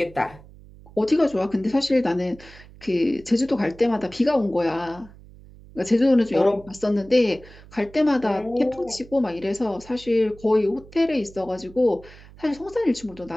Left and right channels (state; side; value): noise; right; hum, 21 dB below the sound